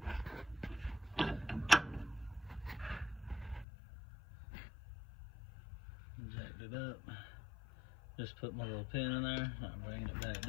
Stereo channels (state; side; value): drops out; right; at 3.7 s